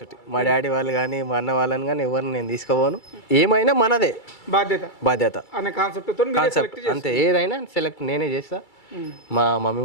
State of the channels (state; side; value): late; right; 2.3 ms